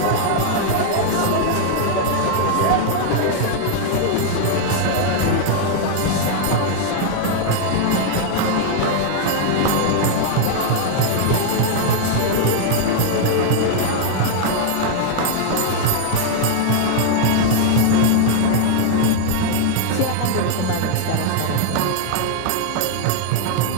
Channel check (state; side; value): different; both; correlation 0.00